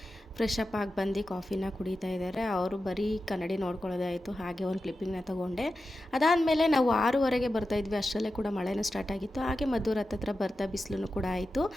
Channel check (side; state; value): both; normal; correlation 0.92